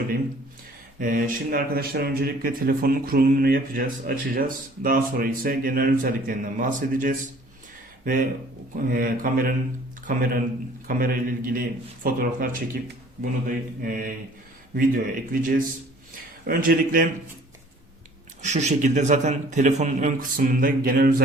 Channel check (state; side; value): normal; both; correlation 0.53